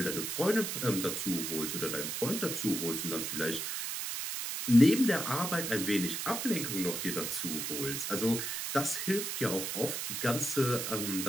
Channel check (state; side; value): noise; right; hiss, 3 dB below the sound